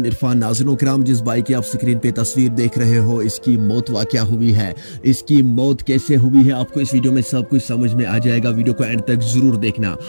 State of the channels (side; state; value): both; inverted; correlation -1.00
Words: इरफान। नाज़रीन किराम, जिस बाइक की आप स्क्रीन पे तस्वीर देख रहे हो, इसकी मौत क्या हुई है, इसकी मौत कैसे हुई है, आपको इस वीडियो में सब कुछ समझ में आ जाएगा। वीडियो को एंड तक जरूर देखना